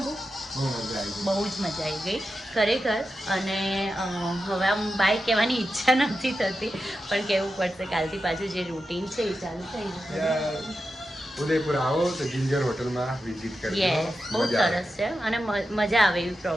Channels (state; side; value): normal; both; correlation 0.90